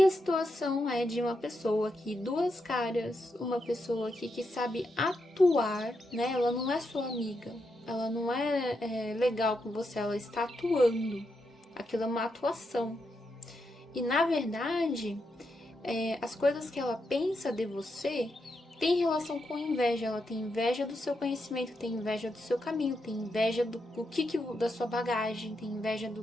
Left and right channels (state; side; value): normal; both; correlation 0.83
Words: a situação é de uma pessoa aqui, duas caras, uma pessoa aqui que sabe atuar, né? Ela não é sua amiga, ela não é legal com você, ela está atuando. Aquilo é uma atuação. E na verdade, as coisas que ela pensa de você tem relação com inveja. Ela tem inveja do seu conhecimento, tem inveja do seu caminho, tem inveja da sua bagagem, tem inveja